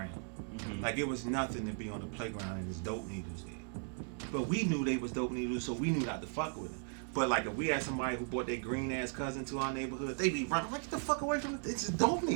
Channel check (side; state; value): left; silent; 53 dB below the other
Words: Mm-hmm. Like it was nothing to be on the playground and there's dope needles there. But we knew they was dope needles, so we knew not to fuck with them. But like if we had somebody who brought their green ass cousin to our neighborhood, they be running like, get the fuck away from it. It's a dope